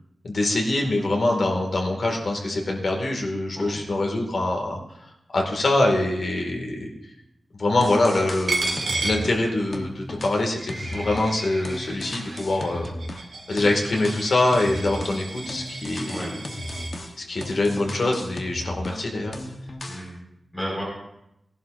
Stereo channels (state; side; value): normal; both; correlation 0.94